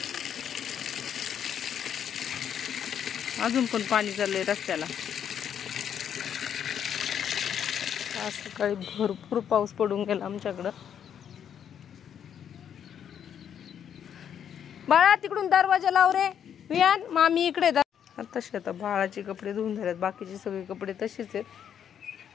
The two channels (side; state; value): right; quieter; 8.8 dB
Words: अजून पण पाणी चाललंय रस्त्याला. आज सकाळी भरपूर पाऊस पडून गेला आमच्याकडं. बाळा तिकडून दरवाजा लाव रे वियान. मामी इकडे तसे आता बाळाचे कपडे धुवून झालेत. बाकीचे सगळे कपडे तसेच आहेत.